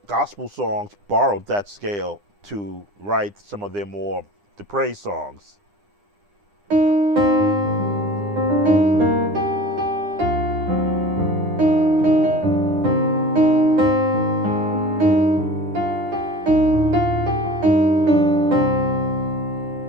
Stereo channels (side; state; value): left; late; 9.9 ms